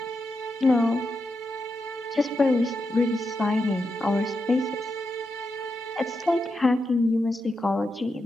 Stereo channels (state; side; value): normal; both; correlation 0.86